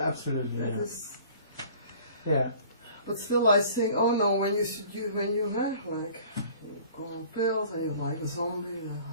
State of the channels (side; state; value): both; inverted; correlation -0.49